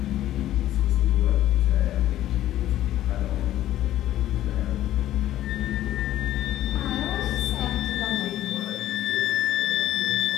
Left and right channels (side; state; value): right; quieter; 13.2 dB